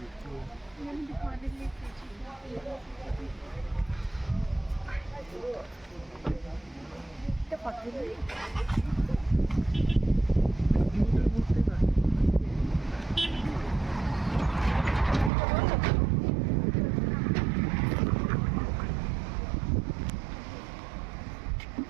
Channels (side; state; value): left; drops out; at 15.3 s